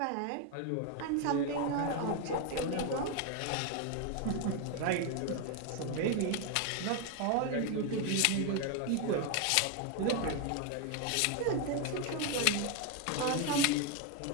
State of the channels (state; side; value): different; both; correlation 0.01